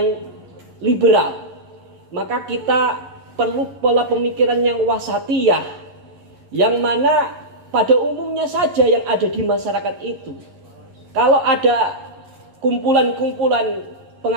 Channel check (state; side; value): late; left; 11 ms